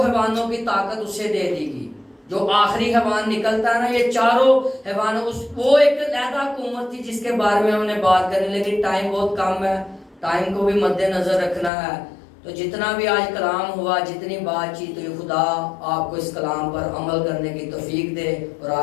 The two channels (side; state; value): right; drops out; at 11.7 s